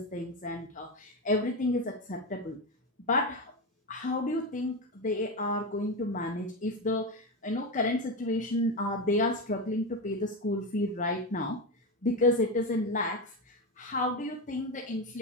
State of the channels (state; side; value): normal; both; correlation 0.15